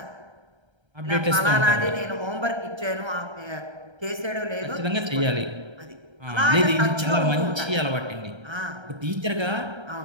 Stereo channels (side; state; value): left; late; 1.3 ms